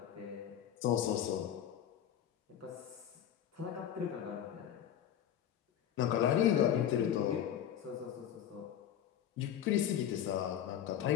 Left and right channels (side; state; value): right; quieter; 10.2 dB